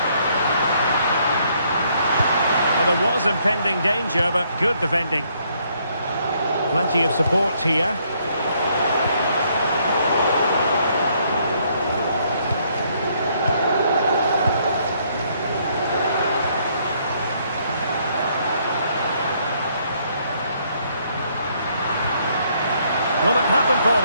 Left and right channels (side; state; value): both; inverted; correlation -0.69